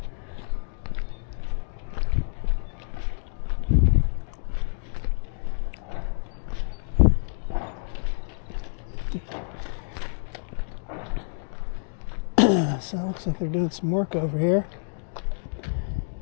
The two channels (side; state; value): right; silent; digital silence